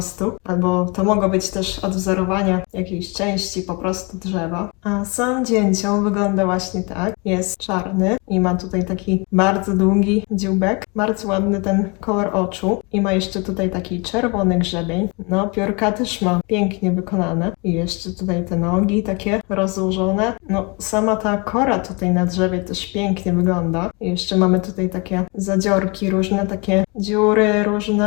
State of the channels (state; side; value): quieter; right; 30.0 dB